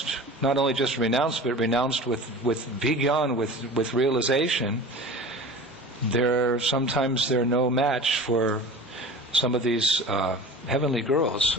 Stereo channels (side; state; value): both; normal; correlation 0.38